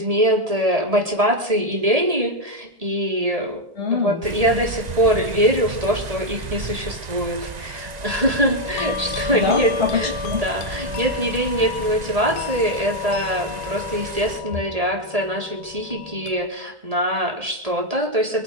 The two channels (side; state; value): left; late; 1.8 ms